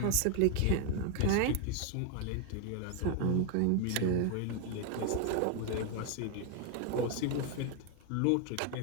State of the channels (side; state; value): both; different; correlation 0.01